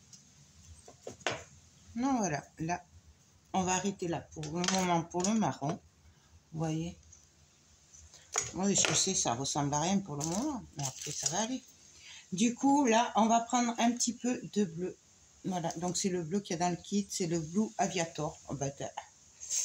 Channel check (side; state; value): both; identical; correlation 1.00